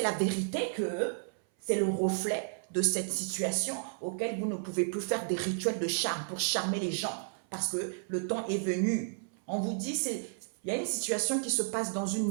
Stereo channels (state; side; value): silent; left; 56 dB below the other